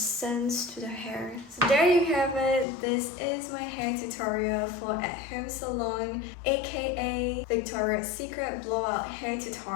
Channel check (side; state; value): right; drops out; at 2.7 s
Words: to the hair. So there you have it. This is my hair tutorial for at home salon, aka Victoria's Secret blowout hair